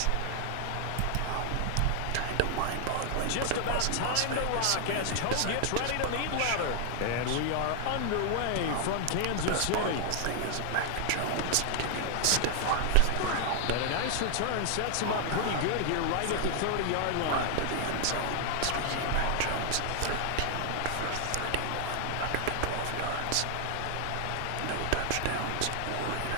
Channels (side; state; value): both; different; correlation 0.00